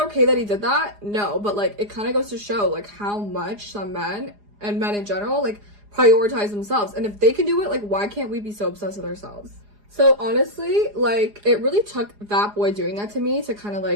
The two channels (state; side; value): late; left; 4.9 ms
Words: that he did that? No, but like it kind of goes to show like how much some men and men in general like prioritize themselves. And if they can do it, like, why can't we be so obsessed with ourselves? So honestly, like, it really took that boy doing that to me to kind of